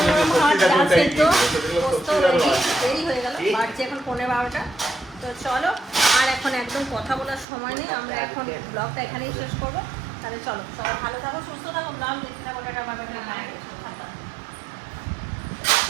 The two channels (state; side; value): drops out; left; at 7.5 s